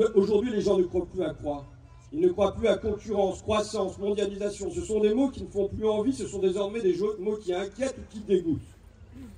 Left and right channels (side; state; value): both; identical; correlation 1.00